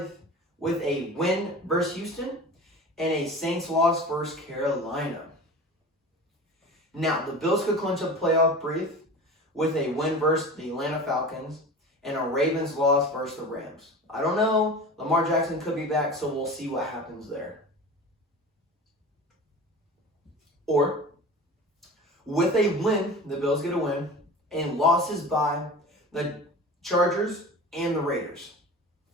with a win versus Houston and a Saints loss versus Carolina. Now, the Bills could clinch a playoff berth with a win versus the Atlanta Falcons and a Ravens loss versus the Rams. I don't know. Lamar Jackson could be back, so we'll see what happens there. Or, with a win, the Bills get a win, and losses by the Chargers and the Raiders.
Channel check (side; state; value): both; normal; correlation 0.35